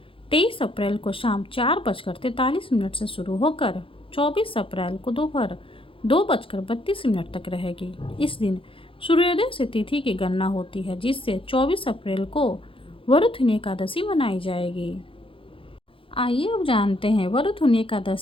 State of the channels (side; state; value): right; late; 0.26 ms